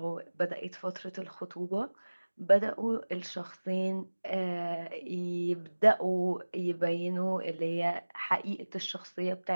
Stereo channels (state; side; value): inverted; both; correlation -1.00